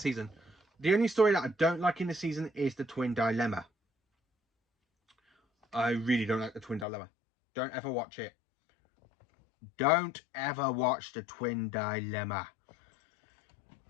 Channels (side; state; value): right; drops out; at 6.9 s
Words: season. The only story that I don't like in the season is the Twin Dilemma. I really don't like the Twin Dilemma. Don't ever watch it. Don't ever watch the Twin Dilemma.